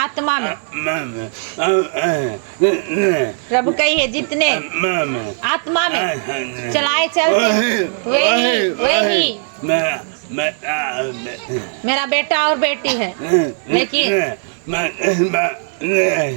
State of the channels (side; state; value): left; silent; 61 dB below the other